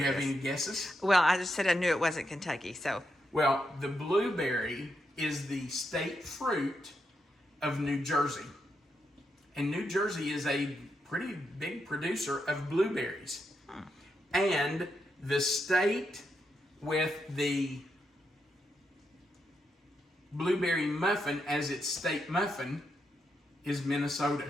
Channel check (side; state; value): both; normal; correlation 0.82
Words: to have this. any guesses? Well, I just said I knew it wasn't Kentucky, so. Well, the blueberry is the state fruit of New Jersey. And New Jersey is a pretty big producer of blueberries. And the state with the blueberry muffin as its state muffin is